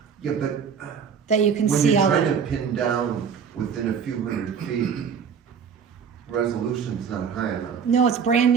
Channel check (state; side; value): quieter; left; 6.8 dB